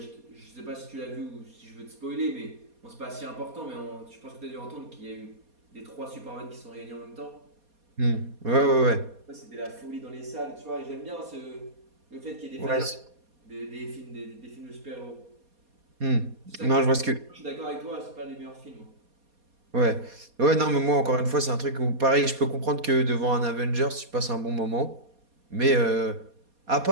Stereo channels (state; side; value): late; left; 4.2 ms